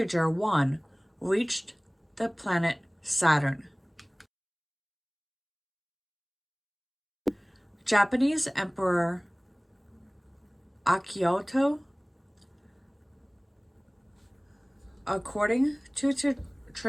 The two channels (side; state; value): both; identical; correlation 1.00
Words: 1 reached the planet Saturn. Japanese Emperor Akihito, according to